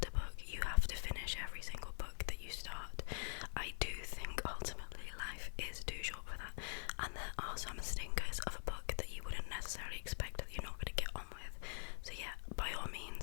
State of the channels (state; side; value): silent; right; digital silence